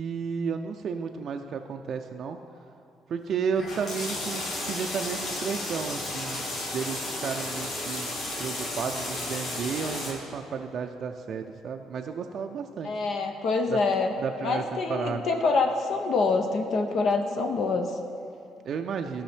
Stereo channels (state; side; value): normal; both; correlation 0.68